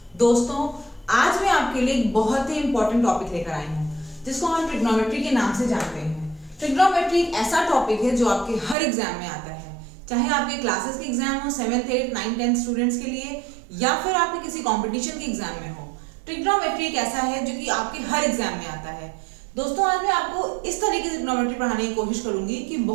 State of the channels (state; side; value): drops out; left; at 8.8 s